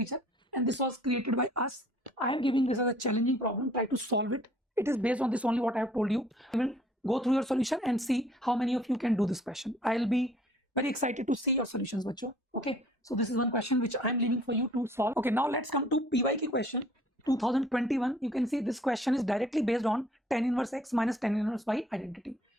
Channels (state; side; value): normal; both; correlation 0.56